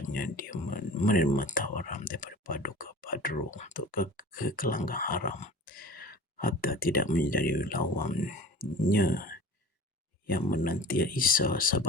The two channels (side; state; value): both; normal; correlation 0.40